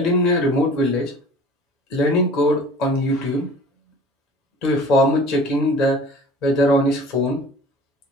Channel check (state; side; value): normal; both; correlation 0.45